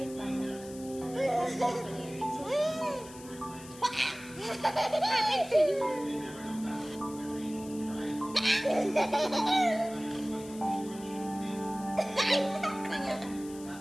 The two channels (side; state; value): left; noise; hiss, 18 dB below the sound